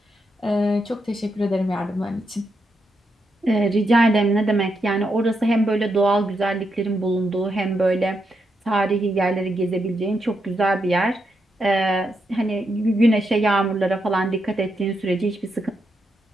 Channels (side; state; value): both; normal; correlation 0.82